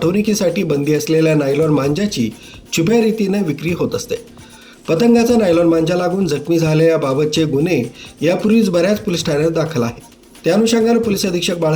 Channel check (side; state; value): both; identical; correlation 1.00